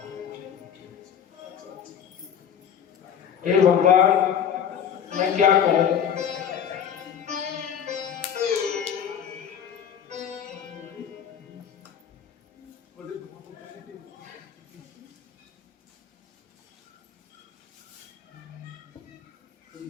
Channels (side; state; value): right; quieter; 8.3 dB